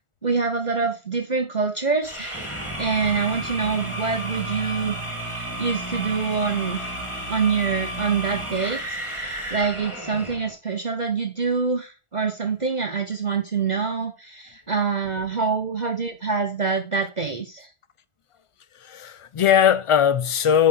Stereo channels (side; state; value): right; late; 1.4 ms